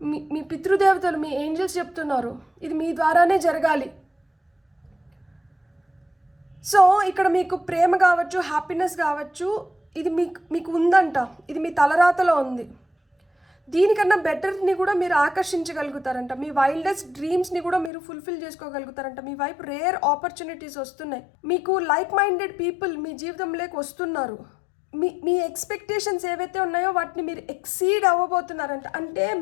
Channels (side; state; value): right; drops out; at 17.9 s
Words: మీ పితృదేవతలు, మీ ఏంజల్స్ చెప్తున్నారు ఇది మీ ద్వారానే జరగాలి. సో ఇక్కడ మీకు ప్రేమ కావచ్చు, హ్యాపీనెస్ కావచ్చు, ఇది మీకు ఉందంట. ఇది మీ తలరాతలో ఉంది. దీనికన్నా బెటర్ని కూడా మీరు ఆకర్షించగలుగుతారంట. మీ వైల్డెస్ట్ డ్రీమ్స్ని కూడా మీరు ఫుల్ఫిల్ చేసుకోగలుగుతారంట. మీ వైపు రేర్ ఆపర్చునిటీస్ వస్తున్నాయి. మీకు లైక్ మైండెడ్ పీపుల్ మీ జీవితంలోకి వస్తున్నారు. మీ ఎక్స్పెక్టేషన్స్ ఏవైతే ఉన్నాయో వాటిని మీరు ఎక్సీడ్ అవ్వబోతున్నారంట. అంటే